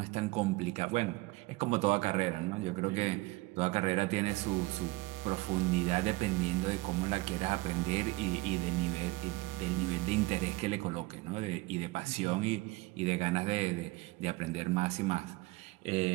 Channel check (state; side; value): quieter; left; 21.4 dB